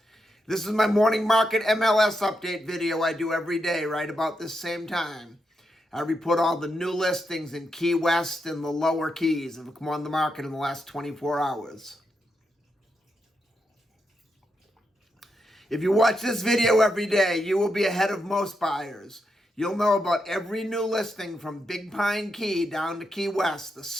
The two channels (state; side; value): normal; both; correlation 0.84